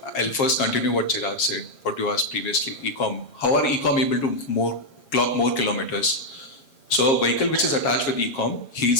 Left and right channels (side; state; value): right; late; 7.4 ms